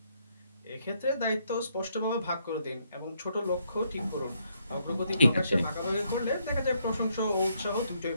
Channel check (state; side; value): inverted; both; correlation -0.74